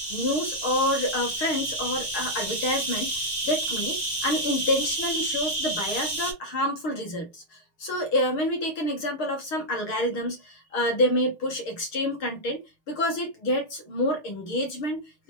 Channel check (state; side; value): late; right; 6.5 ms